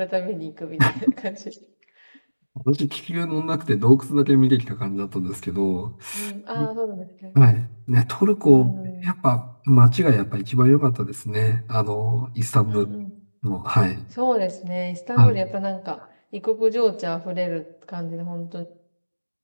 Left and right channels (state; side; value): inverted; both; correlation -1.00